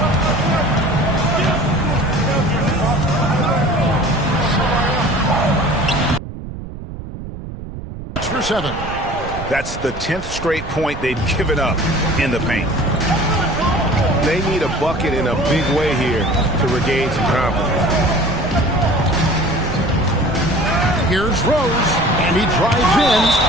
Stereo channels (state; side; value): noise; right; rumble, 10 dB below the sound